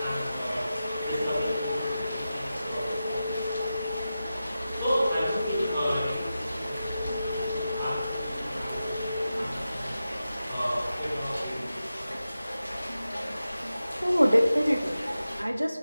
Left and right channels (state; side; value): inverted; both; correlation -0.93